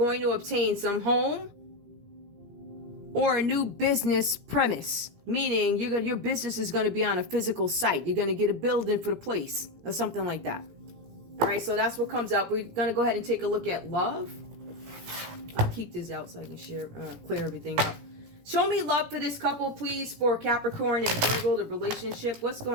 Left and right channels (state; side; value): late; left; 17 ms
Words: to obtain some home or a new business premise. Meaning your business is going to be on a physical site. You're going to get a building for the place or something like that. All right, so that's what comes up. We're going to go ahead and take a look at love. I'll keep this out so I can clear everything up. Show me love for this couple, please, for Capricorn and Virgo, the relationship. What's